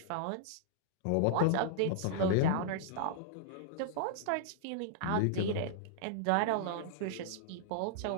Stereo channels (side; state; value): both; different; correlation -0.01